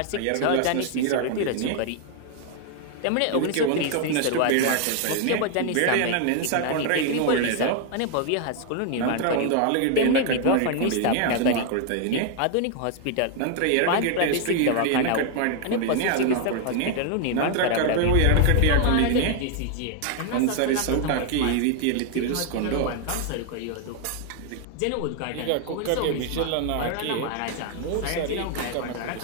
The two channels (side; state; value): both; different; correlation 0.00